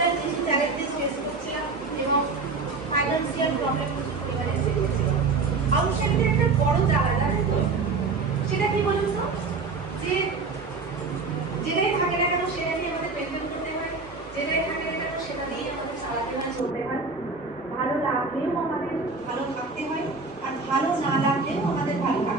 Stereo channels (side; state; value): left; quieter; 4.2 dB